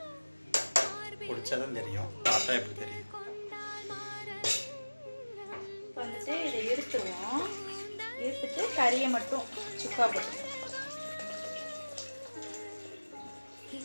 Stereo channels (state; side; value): inverted; both; correlation -1.00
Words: குடிச்சாதான் தெரியும், பார்த்தா எப்படி தெரியும்? வந்துட்டு இதை எடுத்துருவோம். எடுத்துட்டு கறியை மட்டும் சுக்கா போட்டுருவோம்.